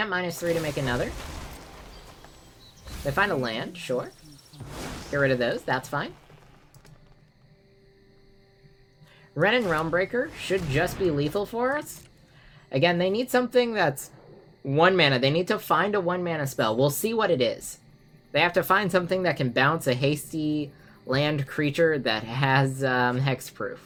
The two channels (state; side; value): identical; both; correlation 1.00